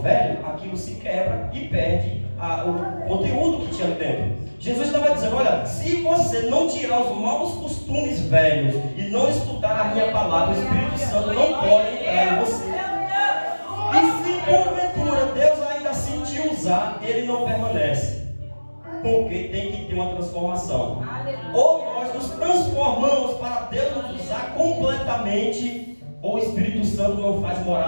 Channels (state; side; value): inverted; both; correlation -1.00